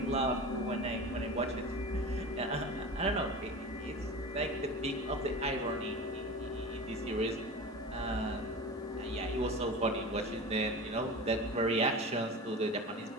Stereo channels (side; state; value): both; normal; correlation 0.32